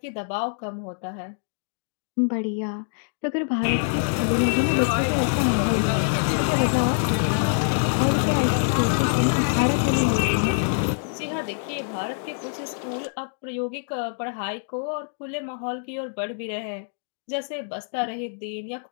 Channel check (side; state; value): right; silent; digital silence